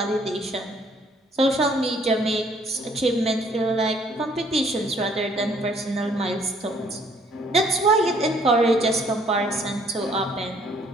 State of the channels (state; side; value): normal; both; correlation 0.62